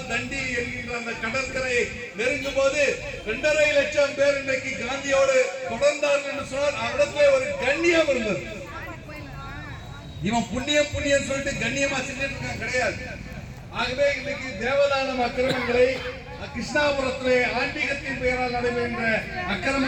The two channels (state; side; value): identical; both; correlation 1.00